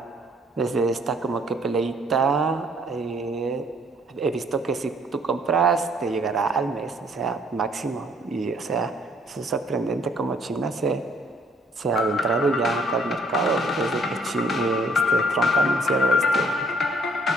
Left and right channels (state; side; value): normal; both; correlation 0.64